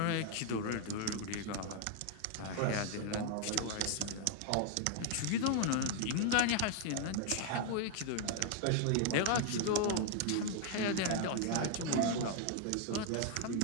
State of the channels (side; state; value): both; different; correlation 0.00